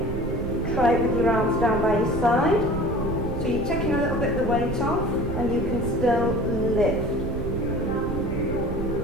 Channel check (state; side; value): noise; right; rumble, 5 dB below the sound